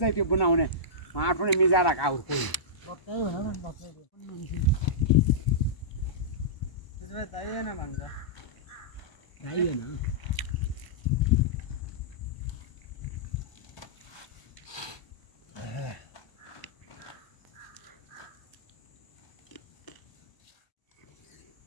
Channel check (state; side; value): late; right; 1.0 ms